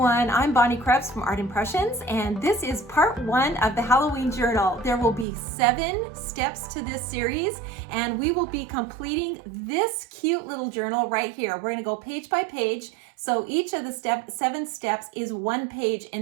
I'm Bonnie Krebs from Art Impressions, and this is part 1 of the Halloween journal. There will be 7 steps to this series, and we will be completing this cute little journal right here. We're going to go page by page, so each of the 7 steps is 1 page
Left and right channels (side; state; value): left; drops out; at 5.2 s